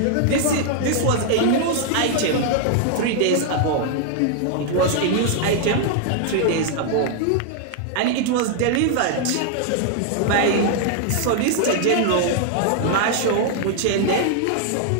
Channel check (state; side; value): different; both; correlation 0.00